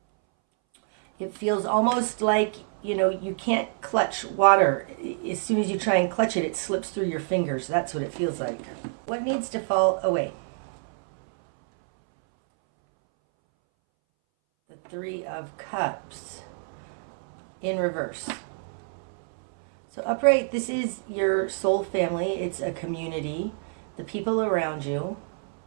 It feels almost like, you know, you can't clutch water. As soon as you try and clutch it, it slips through your fingers. That's what it feels like. What needs to fall away? The Three of Cups in reverse. So upright, this is your soul family. It's a community. The people around you.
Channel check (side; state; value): left; silent; 60 dB below the other